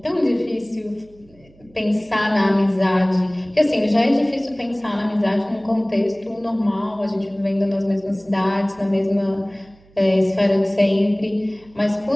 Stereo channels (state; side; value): noise; right; hum, 28 dB below the sound